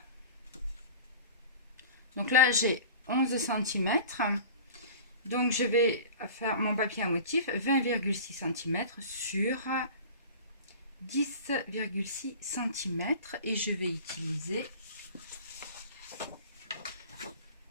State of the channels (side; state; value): both; inverted; correlation -0.38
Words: Donc là j'ai 11 cm. Donc je vais faire mon papier à motif 20,6 cm sur 10,6 cm et je vais utiliser